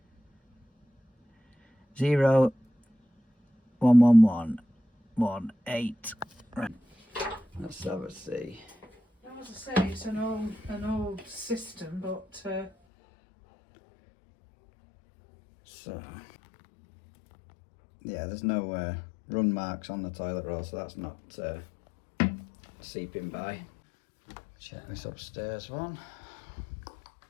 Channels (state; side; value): drops out; right; at 12.7 s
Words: 0 1 1 1 1 8. Right. Let's have a see. As I say, it's an old system, but So, yeah, there's no run marks on the toilet roll, so that's not seeping by. Check this upstairs one.